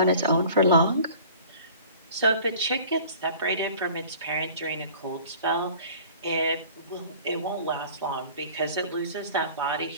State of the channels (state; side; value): inverted; both; correlation -0.46